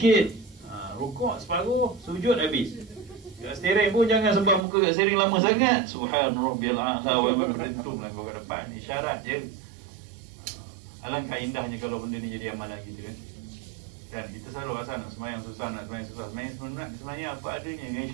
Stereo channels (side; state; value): left; drops out; at 4.7 s